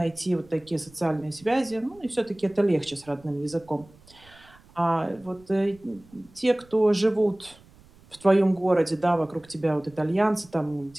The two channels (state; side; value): noise; right; rumble, 26 dB below the sound